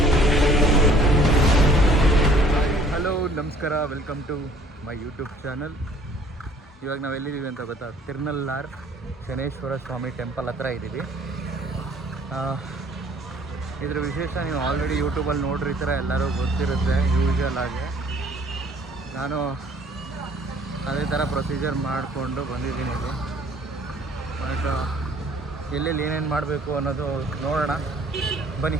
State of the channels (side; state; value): both; normal; correlation 0.56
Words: ಹಲೋ, ನಮಸ್ಕಾರ, welcome to my YouTube channel. ಇವಾಗ ನಾವು ಎಲ್ಲಿದ್ದೀವಿ ಅಂತ ಗೊತ್ತಾ? ತಿರ್ನಲ್ಲಾರ್ ಶನೇಶ್ವರ ಸ್ವಾಮಿ ಟೆಂಪಲ್ ಹತ್ರ ಇದ್ದೀವಿ. ಇದ್ರ ವಿಶೇಷ ನೀವು ಆಲ್ರೆಡಿ ಯೂಟ್ಯೂಬಲ್ಲಿ ನೋಡಿರ್ತೀರ, ಎಲ್ಲರೂ ಗೊತ್ತಿರುತ್ತೆ ಯೂಶಲ್ ಆಗಿ. ನಾನು ಅದೇ ಥರ ಪ್ರೊಸೀಜರ್ ಮಾಡಿಕೊಂಡು ಬಂದಿದ್ದೀನಿ ಇಲ್ಲಿ. ಬಟ್ ಎಲ್ಲೆಲ್ಲಿ ಏನೇನು ಮಾಡಬೇಕು ಅನ್ನೋದು ನೋಡೋಣ ಬನ್ನಿ.